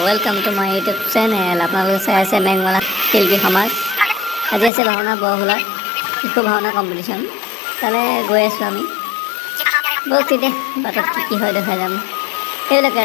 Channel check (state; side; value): drops out; right; at 4.7 s